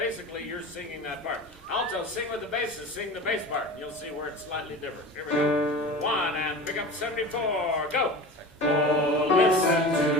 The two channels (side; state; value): both; normal; correlation 0.33